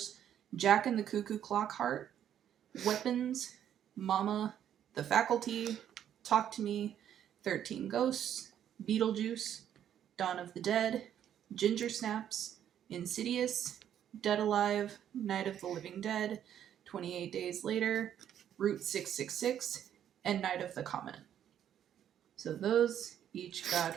Jack and the Cuckoo Clock Heart, Weapons, Mama, The Faculty, Talk to Me, 13 Ghosts, Beetlejuice, Dawn of the Dead, Ginger Snaps, Insidious, Dead Alive, Night of the Living Dead, 28 Days Later, Route 666, and Night of the Comet. So those each got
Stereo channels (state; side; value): quieter; left; 10.0 dB